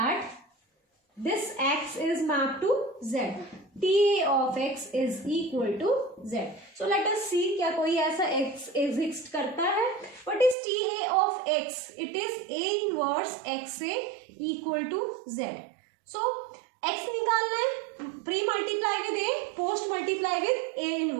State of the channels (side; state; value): left; drops out; at 10.6 s